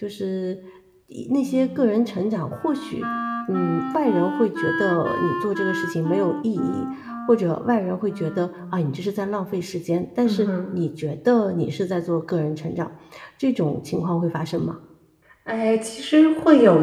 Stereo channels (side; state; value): both; identical; correlation 1.00